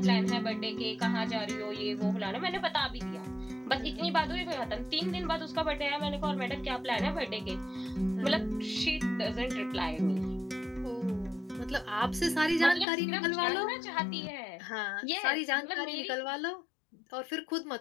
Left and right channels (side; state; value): right; drops out; at 12.9 s